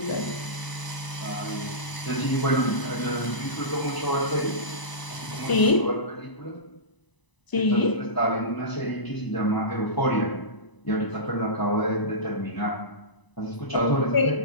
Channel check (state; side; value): late; right; 1.0 ms